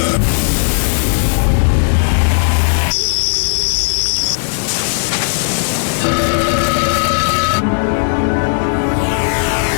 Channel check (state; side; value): silent; right; digital silence